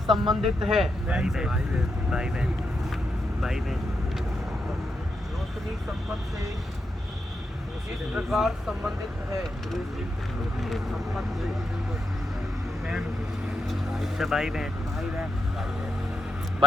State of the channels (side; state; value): both; normal; correlation 0.83